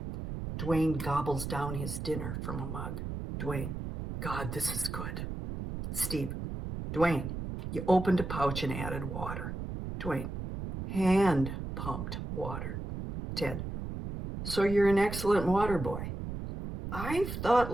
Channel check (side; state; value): right; noise; rumble, 6 dB below the sound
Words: Dwayne gobbles down his dinner from a mug. Dwayne, God, this is good. Steve, Dwayne, you opened a pouch and added water. Dwayne, hand-pumped water. Ted, so you're an excellent water boy. I've thought